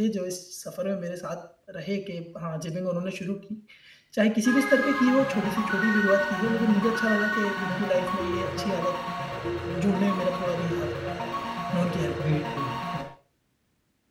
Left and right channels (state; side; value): identical; both; correlation 1.00